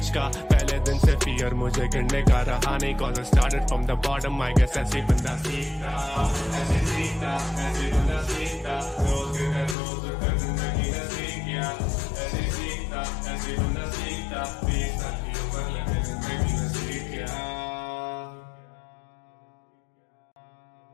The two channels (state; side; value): drops out; right; at 9.8 s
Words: का, पहले दिन से फियर मुझे गिरने का रहा नहीं, cause I started from the bottom I guess ऐसे बंदा सीखता, ऐसे सीखता, ऐसे बंदा सीखता, रोज कर जिंदगी ने सीख गया, ऐसे सीखता, ऐसे बंदा सीखता, 20 साल की उम्र लगे जिंदगी ने सीख गया।